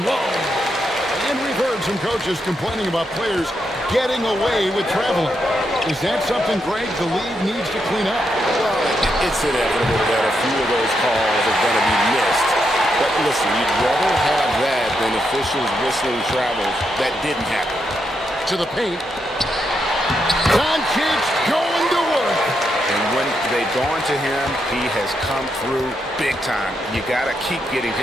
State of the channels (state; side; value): normal; both; correlation 0.82